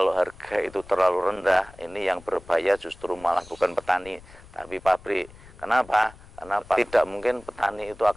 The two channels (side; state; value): left; noise; rumble, 21 dB below the sound